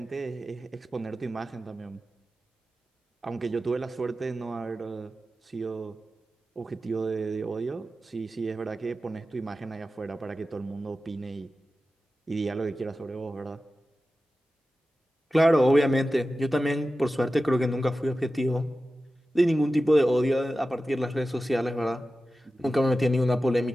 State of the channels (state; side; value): normal; both; correlation 0.94